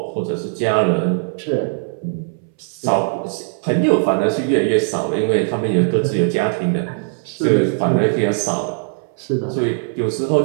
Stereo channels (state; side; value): silent; left; 66 dB below the other